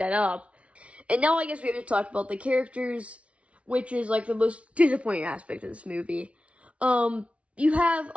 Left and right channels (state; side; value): late; left; 0.062 ms